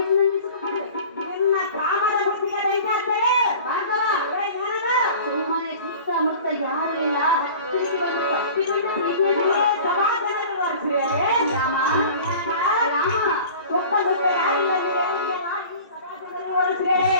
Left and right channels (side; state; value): both; inverted; correlation -0.42